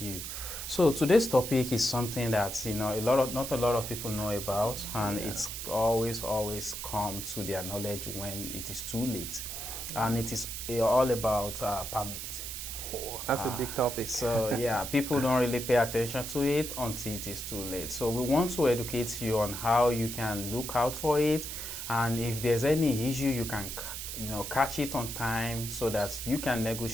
you. So today's topic is something that not a lot of people know about, and it's always come to their knowledge when it is too late, and it is all about permit. That's a big topic. So yeah, people don't really pay attention to it until it is too late. So we want to educate you on how you can look out for it, and if there's any issue, you can catch it on time so that you can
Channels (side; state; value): right; noise; hiss, 6 dB below the sound